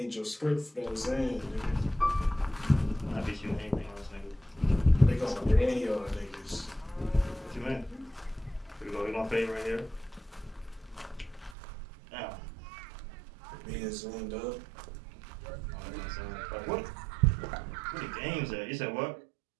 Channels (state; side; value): drops out; left; at 11.6 s